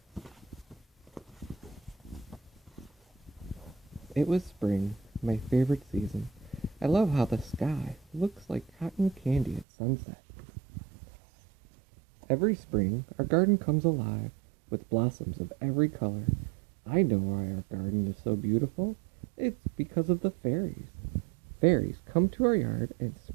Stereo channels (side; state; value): left; drops out; at 9.7 s